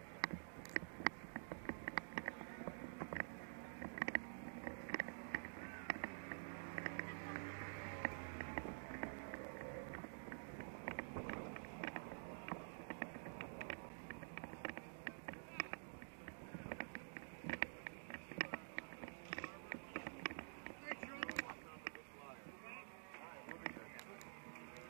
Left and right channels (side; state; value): left; silent; digital silence